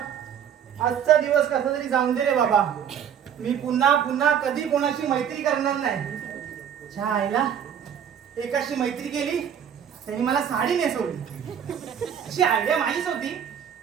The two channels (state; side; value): quieter; left; 8.6 dB